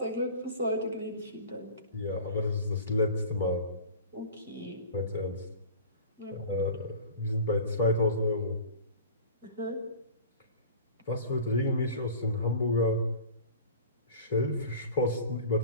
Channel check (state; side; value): inverted; both; correlation -0.40